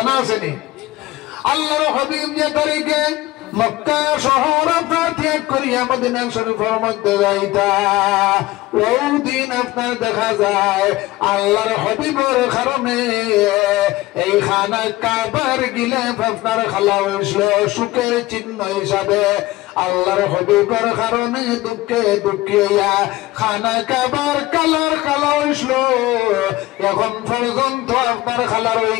আছে নি আল্লাহর হাবিব যে তারিখে মক্কা শহর আপনার ত্যাগ করিয়া মদিনা শরীফের মধ্যে যাইতা ওই দিন আপনার দেখা যায় আল্লাহর হাবিবের কারণে এই খানা কাবার গিলাফ আপনার খালা হইছিল সুখের চিহ্ন হিসাবে আল্লাহর হাবিবের কারণে দুঃখে দুঃখিয়া খানা কাবার কালার খালা হইছিল এখন পর্যন্ত আপনার খালার হয়ে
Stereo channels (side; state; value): right; quieter; 18.2 dB